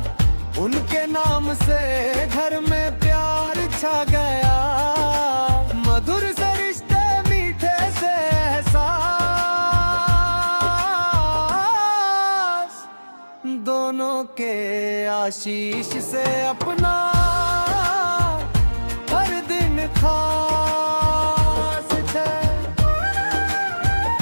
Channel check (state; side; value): inverted; both; correlation -1.00